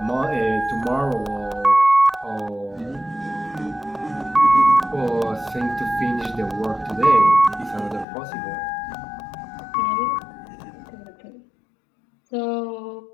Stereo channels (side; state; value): right; drops out; at 8.1 s